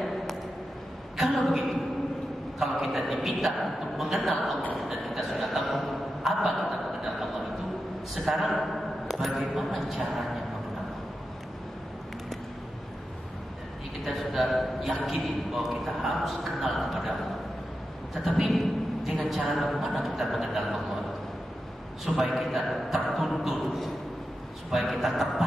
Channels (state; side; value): normal; both; correlation 0.90